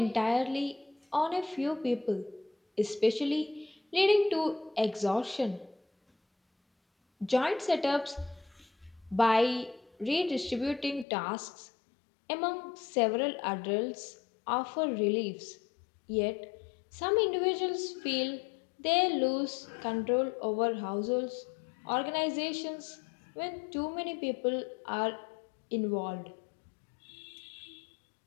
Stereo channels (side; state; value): right; drops out; at 11.1 s